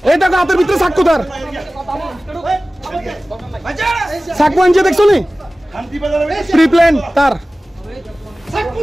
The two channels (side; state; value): both; normal; correlation 0.97